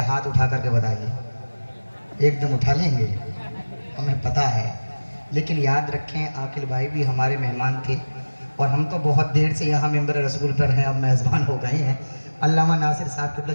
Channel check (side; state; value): both; inverted; correlation -1.00